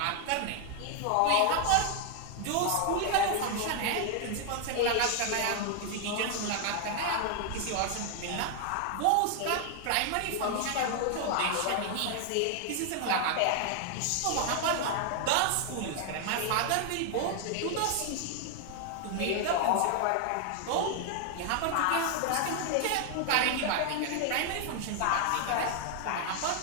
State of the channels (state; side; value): different; both; correlation 0.00